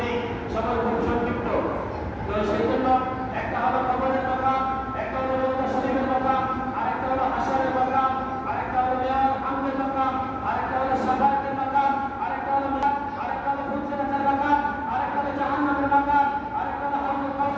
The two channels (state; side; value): identical; both; correlation 1.00